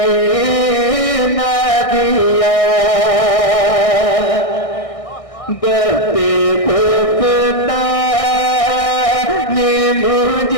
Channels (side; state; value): right; late; 1.6 ms